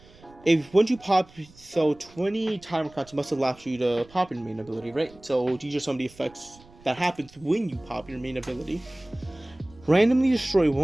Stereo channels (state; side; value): noise; right; rumble, 25 dB below the sound